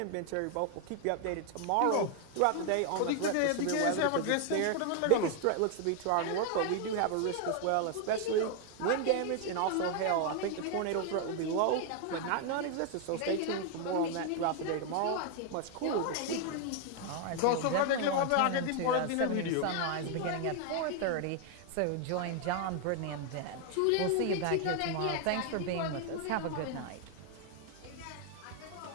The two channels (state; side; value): different; both; correlation 0.00